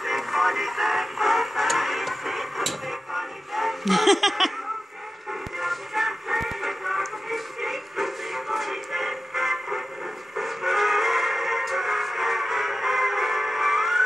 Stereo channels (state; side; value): normal; both; correlation 0.94